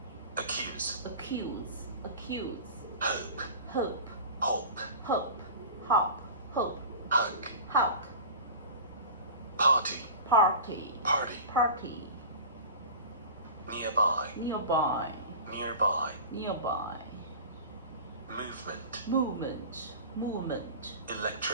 accuse, accuse, accuse, hope, hope, hope, hope, hop, hope, hug, hug, party, party, party, party, nearby, nearby, nearby, nearby, movement, movement, movement,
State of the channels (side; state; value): both; inverted; correlation -0.35